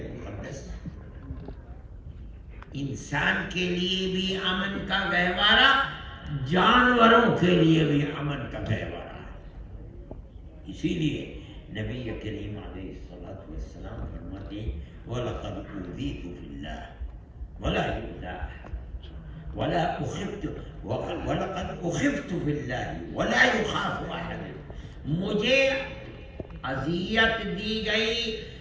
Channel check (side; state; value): both; identical; correlation 1.00